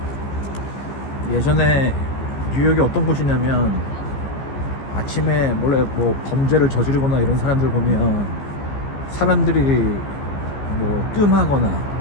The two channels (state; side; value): late; right; 15 ms